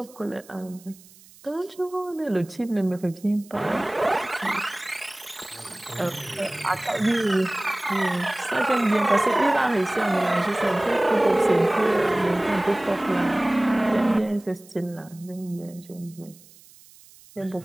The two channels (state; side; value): noise; right; hiss, 24 dB below the sound